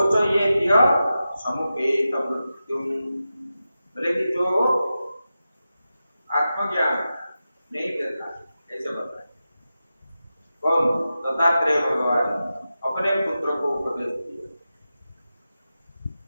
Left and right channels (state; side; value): inverted; both; correlation -0.92